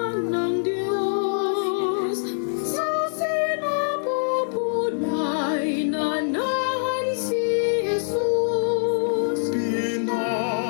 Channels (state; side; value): silent; right; 62 dB below the other